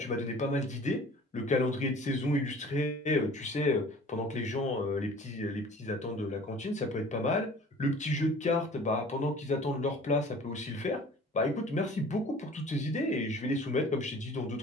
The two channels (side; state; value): both; normal; correlation 0.47